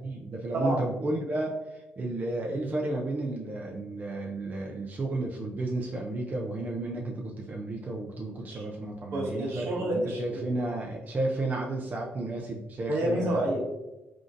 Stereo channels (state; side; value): normal; both; correlation 0.78